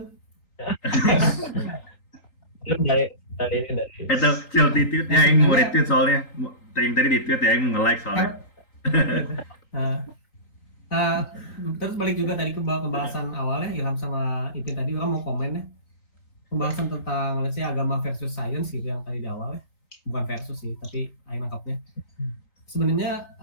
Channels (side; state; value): right; late; 3.8 ms